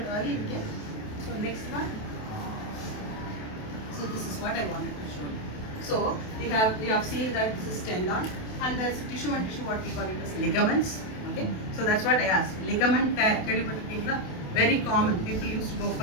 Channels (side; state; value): right; late; 28 ms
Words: early, we can. So next one. So this is what I wanted to show you. So we have seen that this is tendon, and there's tissue and tissue, what we call it as ligaments. Okay. So that's what I asked. Ligament tear, very common. People used to go